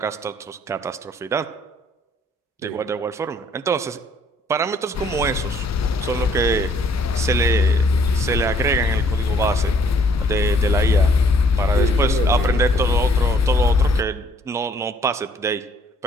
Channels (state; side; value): normal; both; correlation 0.63